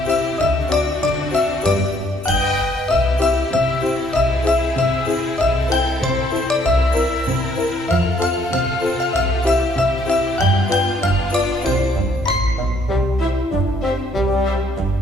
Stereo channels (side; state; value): both; normal; correlation 0.66